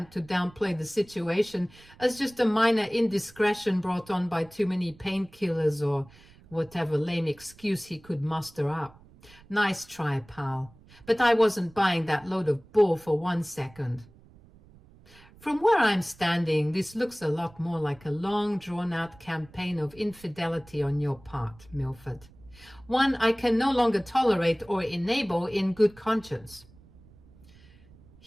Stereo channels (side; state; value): right; noise; rumble, 25 dB below the sound